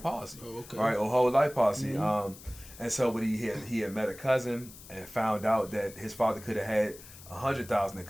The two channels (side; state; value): left; noise; hiss, 18 dB below the sound